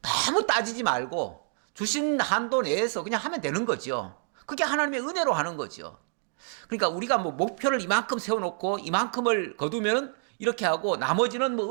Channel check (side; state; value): left; silent; 59 dB below the other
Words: 너무 따지지 말고 주신 한도 내에서 그냥 하면 되는 거죠. 그게 하나님의 은혜로 하는 거죠. 그러니까 우리가 뭐 목표를 이만큼 세워놓고 이만큼을 거두면 이렇게 하고 나머지는